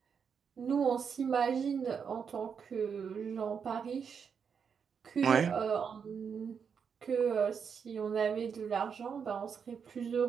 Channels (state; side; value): quieter; left; 6.6 dB